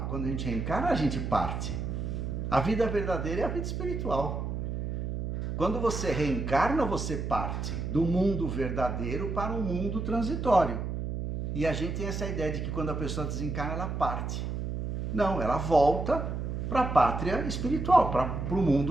reencarna, a gente parte. A vida verdadeira é a vida espiritual. Quando você reencarna, você parte do mundo verdadeiro para um mundo transitório. E a gente tem essa ideia de que quando a pessoa desencarna, ela parte. Não, ela volta para a pátria espiritual, para o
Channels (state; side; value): noise; right; hum, 3 dB below the sound